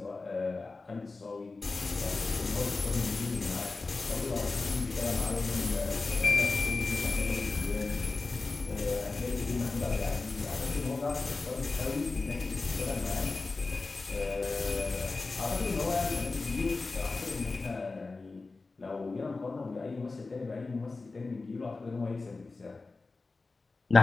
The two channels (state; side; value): quieter; right; 3.7 dB